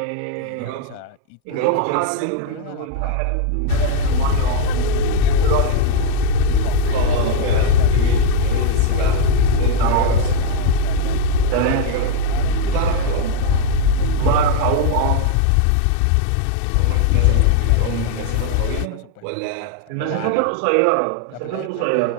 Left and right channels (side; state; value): both; different; correlation 0.00